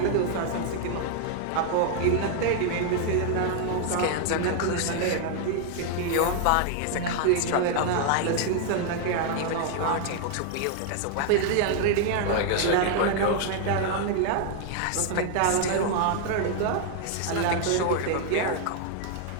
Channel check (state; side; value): different; both; correlation 0.00